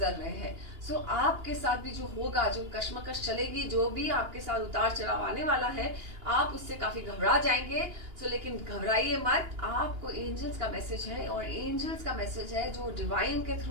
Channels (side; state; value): left; late; 2.8 ms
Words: रहे हैं। सो आपके साथ भी जो होगा, जो कश्मकश चलेगी, जो भी आपके साथ उतार चढ़ाव आने वाला है, आप उससे काफी घबरा जाएंगे। सो लेकिन घबराइए मत, आपको एंजल्स का मैसेज है, और एंजल्स का मैसेज है जो डिवाइन के